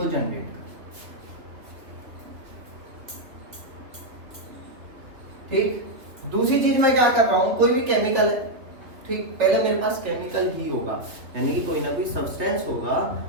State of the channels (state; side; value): late; left; 3.0 ms